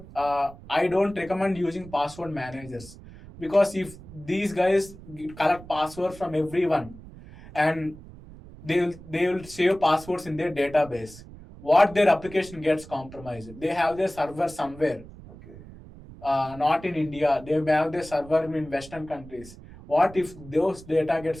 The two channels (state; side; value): noise; right; rumble, 18 dB below the sound